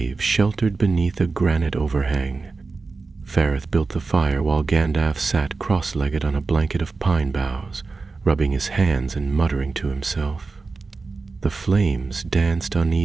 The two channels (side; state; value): left; quieter; 4.1 dB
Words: sheltered beneath a granite overhang. Fareth built the fire while Gandalf sat cross-legged on a blanket of pine boughs, rubbing his hands and muttering to himself. The flames danced